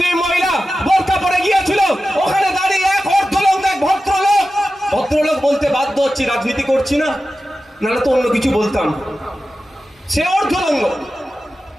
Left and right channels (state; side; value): normal; both; correlation 0.93